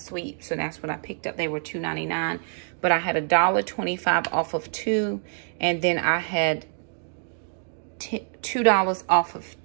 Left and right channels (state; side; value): silent; left; digital silence